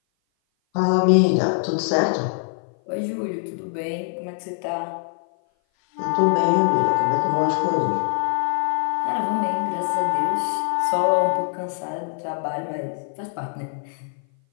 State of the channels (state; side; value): silent; right; 57 dB below the other